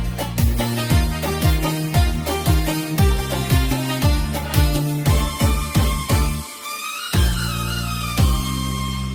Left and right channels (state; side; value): identical; both; correlation 1.00